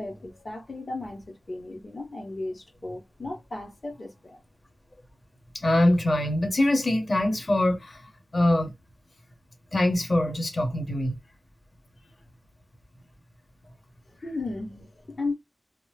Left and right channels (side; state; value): both; normal; correlation 0.96